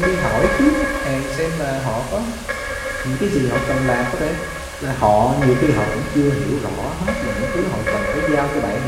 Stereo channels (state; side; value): identical; both; correlation 1.00